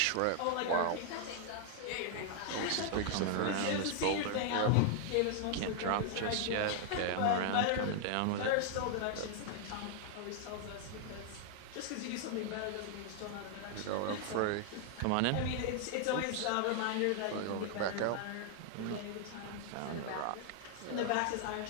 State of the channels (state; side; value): different; both; correlation 0.00